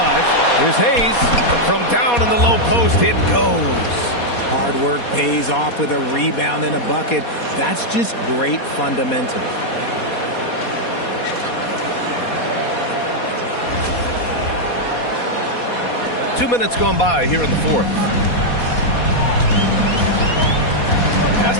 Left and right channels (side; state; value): right; late; 4.2 ms